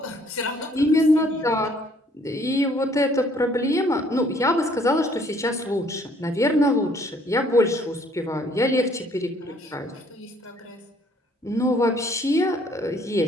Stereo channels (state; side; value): normal; both; correlation 0.61